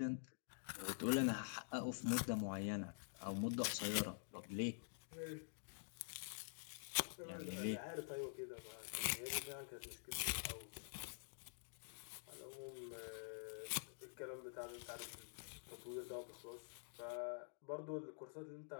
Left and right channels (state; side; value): silent; right; digital silence